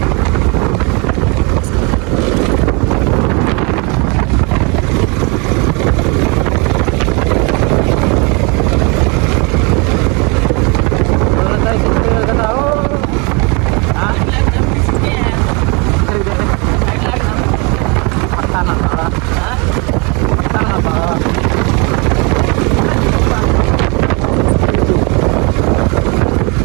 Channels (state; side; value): quieter; left; 30.9 dB